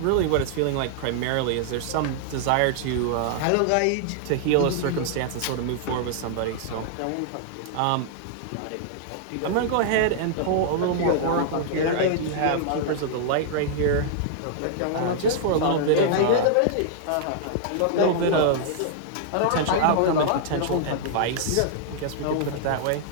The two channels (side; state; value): both; different; correlation -0.01